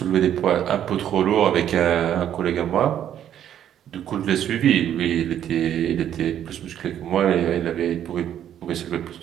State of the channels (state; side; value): quieter; left; 10.3 dB